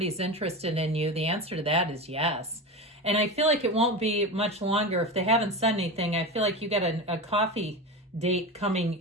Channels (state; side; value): normal; both; correlation 0.24